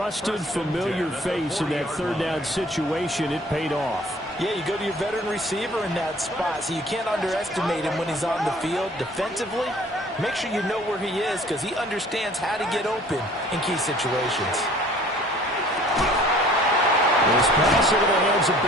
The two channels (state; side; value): normal; both; correlation 0.52